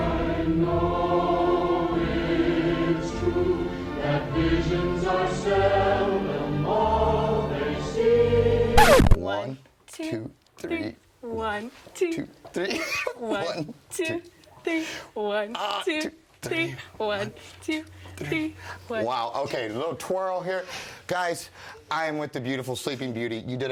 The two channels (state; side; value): identical; both; correlation 1.00